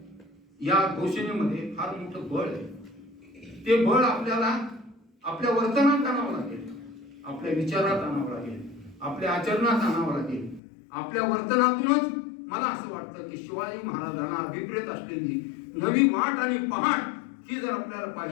या घोषणेमध्ये फार मोठं बळ आहे. ते बळ आपल्याला आपल्या वर्तनात आणावं लागेल, आपल्या विचारात आणावं लागेल, आपल्या आचरणात आणावं लागेल. आपल्या वर्तनातूनच मला असं वाटतं की शिवाजी महाराजांना अभिप्रेत असलेली नवी वाट आणि पहाट ही जर आपल्याला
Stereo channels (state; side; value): drops out; right; at 10.6 s